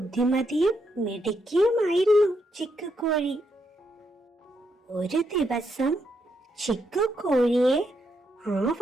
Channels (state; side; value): normal; both; correlation 0.79